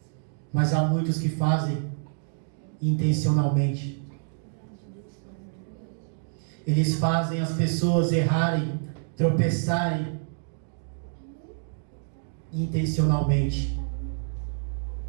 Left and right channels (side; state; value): left; silent; digital silence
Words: Mas há muitos que fazem intencionalmente. Eles fazem as pessoas errarem, tropeçarem intencionalmente.